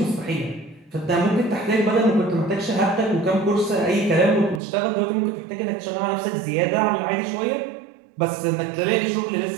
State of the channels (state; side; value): drops out; left; at 4.6 s